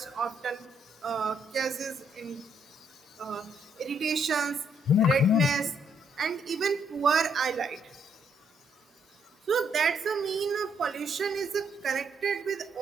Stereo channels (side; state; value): both; normal; correlation 0.72